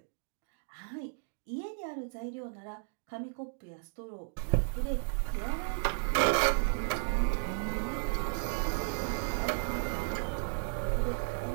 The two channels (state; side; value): silent; left; digital silence